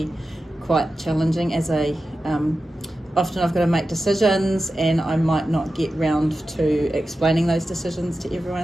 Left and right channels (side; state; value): both; normal; correlation 0.92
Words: quite challenging. Often I've got to make decisions, and I might not get round to explaining those decisions to